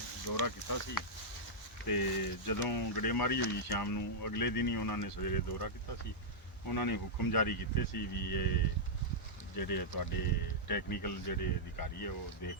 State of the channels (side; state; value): both; normal; correlation -0.08